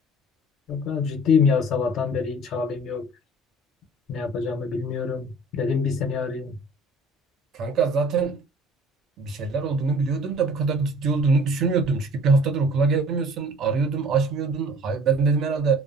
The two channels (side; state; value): both; normal; correlation 0.49